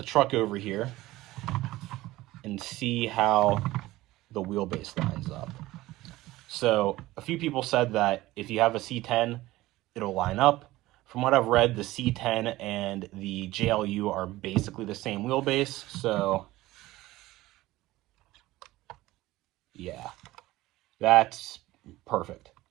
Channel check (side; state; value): left; quieter; 17.6 dB